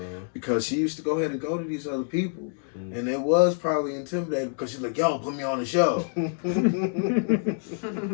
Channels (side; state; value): right; silent; digital silence